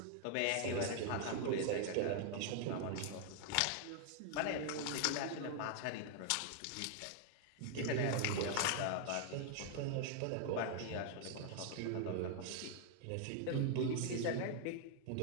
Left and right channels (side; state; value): both; different; correlation 0.00